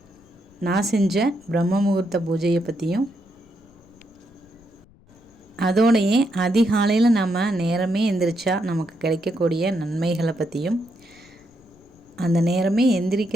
நான் செஞ்ச பிரம்ம முகூர்த்த பூஜையை பற்றியும், அதோடையே அதிகாலையில் நம்ம நேரமே எந்திரிச்சா நமக்கு கிடைக்கக்கூடிய நன்மைகளை பற்றியும், அந்த நேரமே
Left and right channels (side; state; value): left; noise; rumble, 29 dB below the sound